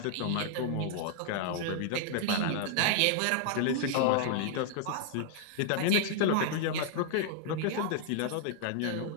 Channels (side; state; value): both; different; correlation -0.01